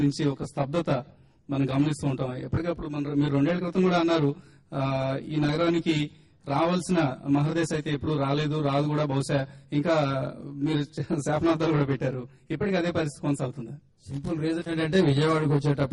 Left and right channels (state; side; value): identical; both; correlation 1.00